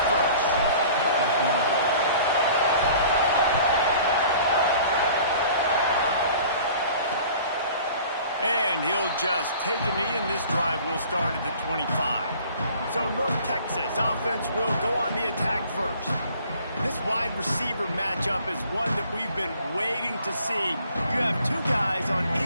first. And he'll just take a knee, and this drive will start at the 25. So North Texas offense will go on the attack first. This wide receiver matchup is one that we've been waiting to see. You have two guys on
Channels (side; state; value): both; inverted; correlation -0.50